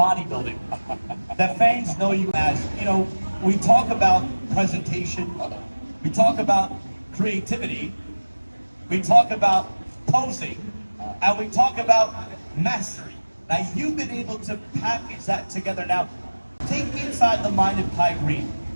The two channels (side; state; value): both; inverted; correlation -1.00